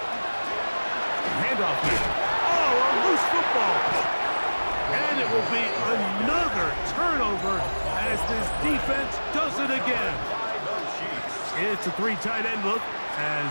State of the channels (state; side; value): inverted; both; correlation -1.00